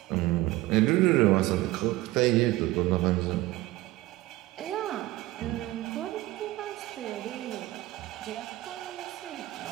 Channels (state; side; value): quieter; left; 17.9 dB